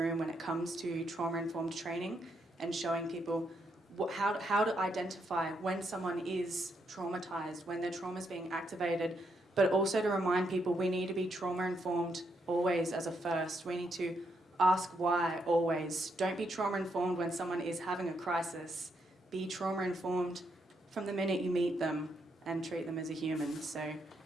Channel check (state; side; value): normal; both; correlation 0.78